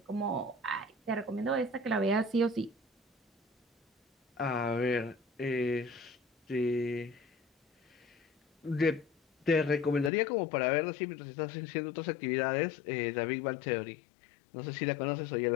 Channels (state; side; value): drops out; right; at 10.1 s